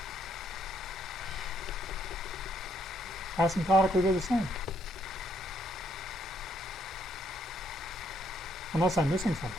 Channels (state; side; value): normal; both; correlation 0.71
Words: Asymptotically, they're the same. Unless I'm missing